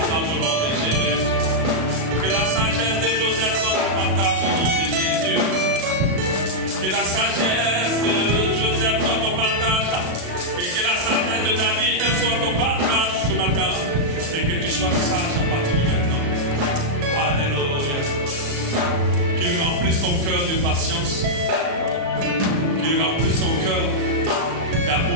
au nom de Jésus. Que la sagesse de Joseph soit ton partage au nom de Jésus. Que la sagesse de Joseph soit ton partage. Et que la sagesse de David soit ton partage ce matin. Et que tu sois sage à partir de maintenant. Alléluia. Qu'il remplisse ton cœur de patience. Qu'il remplisse ton cœur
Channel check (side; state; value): left; late; 37 ms